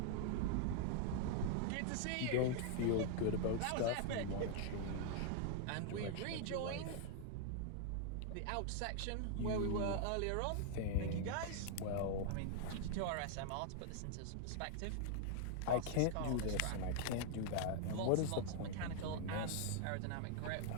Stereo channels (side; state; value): both; different; correlation 0.00